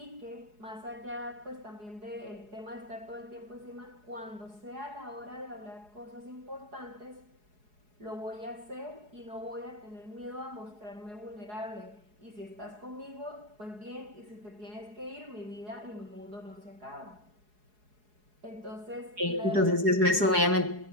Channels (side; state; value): left; late; 4.8 ms